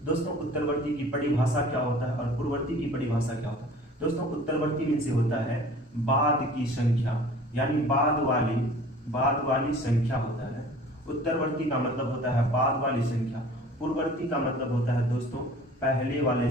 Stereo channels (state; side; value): normal; both; correlation 0.47